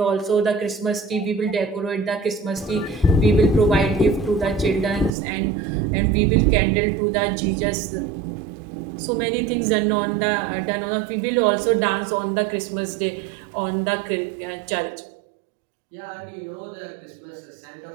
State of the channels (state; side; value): drops out; left; at 5.1 s